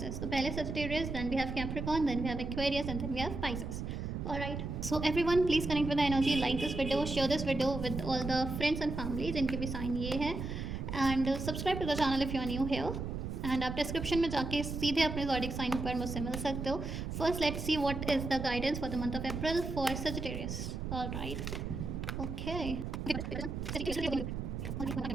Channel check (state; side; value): noise; right; rumble, 5 dB below the sound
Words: तो पहले Sagittarius, then we have Capricorn, then we have Aquarius and then we have Pisces. Alright, so everyone please connect with the energy, like this video, share this video with all the friends and family जिनके भी sign ये है, and subscribe to the channel if you are new here. And आप description में जाके सीधे अपने zodiac sign पर मुझसे मिल सकते हो। First let's see what is the guidance for the month of April for Sagittarius. Alright, okay.